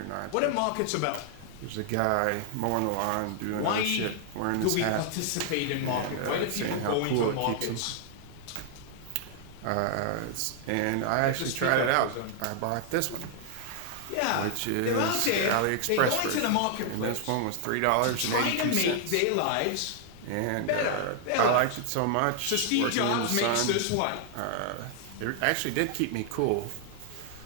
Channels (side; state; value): both; different; correlation 0.00